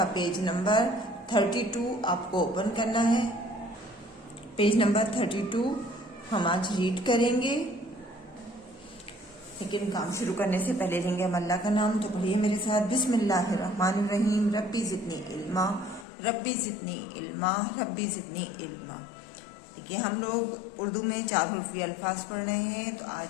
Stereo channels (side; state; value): right; drops out; at 16.1 s